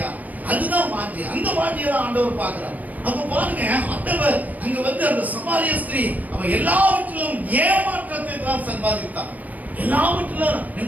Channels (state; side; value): late; left; 0.077 ms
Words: அதுதான் வாஞ்சி. அந்த வாஞ்சியை தான் ஆண்டவர் பார்க்கிறார். அப்ப பாருங்க, ஆண்டவர் அங்க வந்து அந்த சமாரிய ஸ்திரீ அவன் எல்லாவற்றிலும் ஏமாற்றத்தை தான் சம்பாதித்தான். எல்லாவற்றிலும்